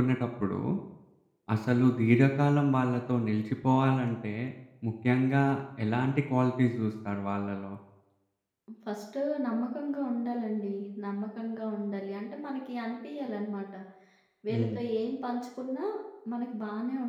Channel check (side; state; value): both; identical; correlation 1.00